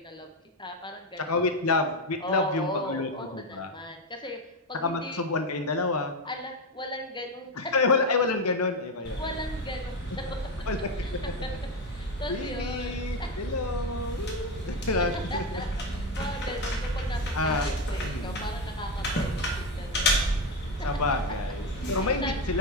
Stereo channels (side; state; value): both; normal; correlation 0.12